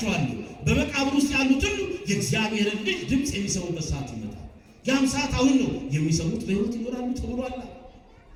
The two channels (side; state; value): both; identical; correlation 1.00